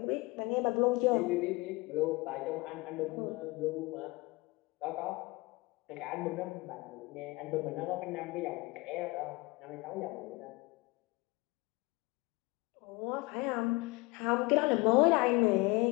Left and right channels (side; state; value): right; quieter; 24.0 dB